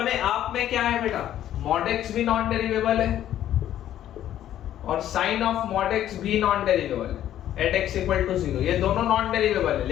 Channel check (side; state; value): right; quieter; 11.8 dB